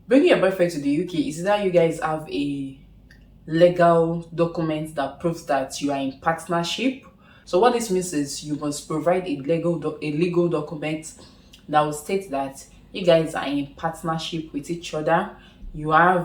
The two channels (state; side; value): identical; both; correlation 1.00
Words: bringing your boyfriend to the UK is that you guys have a legal document that proves that you are in partnership. So what this means is you must provide a legal document that will state that you guys are in partnership with each other. You